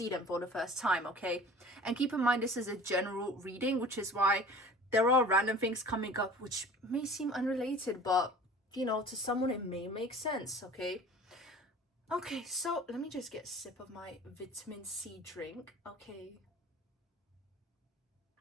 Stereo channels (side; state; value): both; normal; correlation 0.43